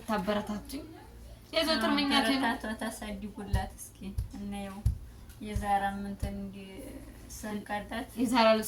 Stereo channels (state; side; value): identical; both; correlation 1.00